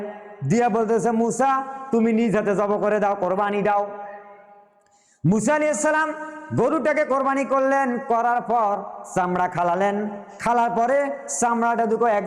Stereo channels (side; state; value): both; identical; correlation 1.00